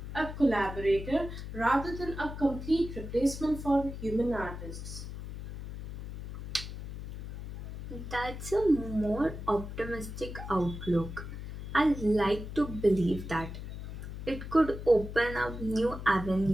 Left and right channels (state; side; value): noise; left; hum, 9 dB below the sound